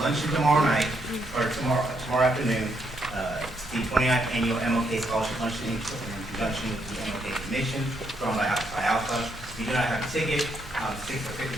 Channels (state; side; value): noise; right; rumble, 16 dB below the sound